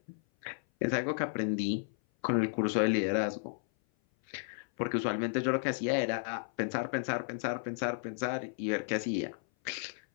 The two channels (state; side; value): silent; right; 56 dB below the other